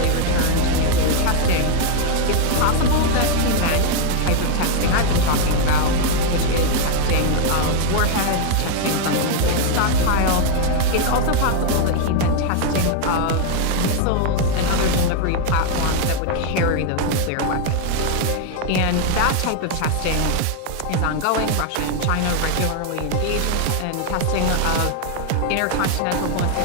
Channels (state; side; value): different; both; correlation 0.00